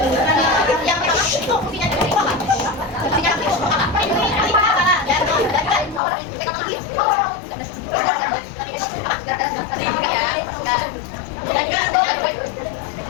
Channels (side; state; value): right; drops out; at 6.0 s